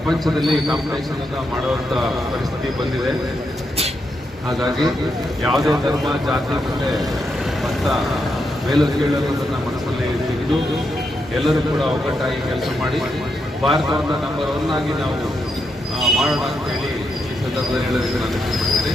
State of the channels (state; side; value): normal; both; correlation 0.82